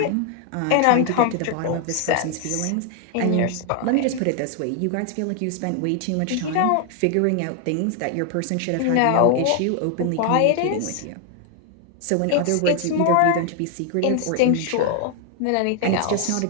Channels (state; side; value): different; both; correlation 0.00